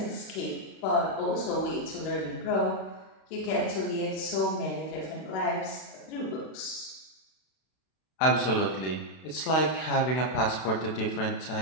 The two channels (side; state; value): right; late; 32 ms